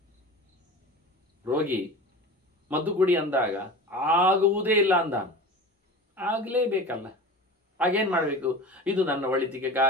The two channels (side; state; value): both; normal; correlation 0.34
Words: ರೋಗಿ ಮದ್ದು ಕುಡಿ ಅಂದಾಗ ಆಗುವುದೇ ಇಲ್ಲ ಅಂದ, ಆಗಲೇಬೇಕಲ್ಲ. ಹಾಗೇನು ಮಾಡಬೇಕು? ಇದು ನನ್ನ ಒಳಿತಿಗೆ